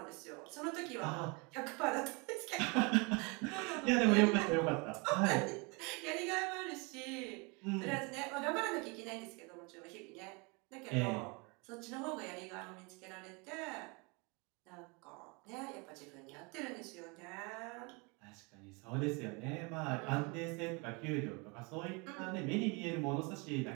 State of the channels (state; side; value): quieter; left; 29.9 dB